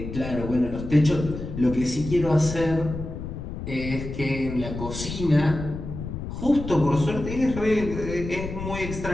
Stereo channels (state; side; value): noise; left; rumble, 7 dB below the sound